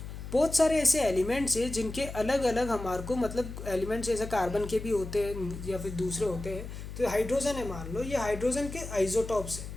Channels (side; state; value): left; noise; hum, 10 dB below the sound